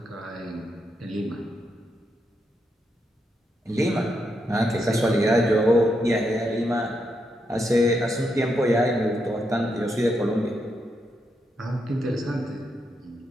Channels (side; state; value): both; normal; correlation 0.81